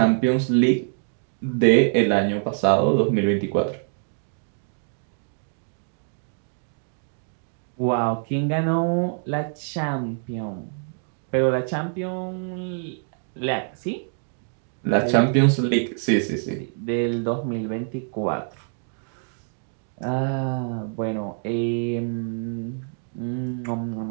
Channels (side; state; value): left; silent; 62 dB below the other